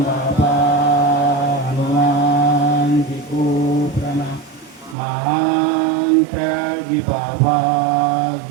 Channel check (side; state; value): left; drops out; at 5.0 s